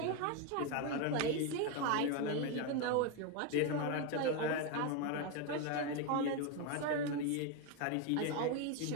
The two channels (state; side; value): different; both; correlation 0.02